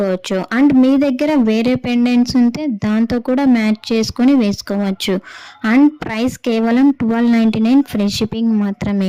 అండ్ మీ దగ్గర వేరే పెండెంట్స్ ఉంటే దాంతో కూడా మ్యాచ్ చేసుకొని వేసుకోవచ్చు. అండ్ ప్రైస్ కేవలం 1299 ఫ్రీ షిప్పింగ్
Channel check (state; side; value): identical; both; correlation 1.00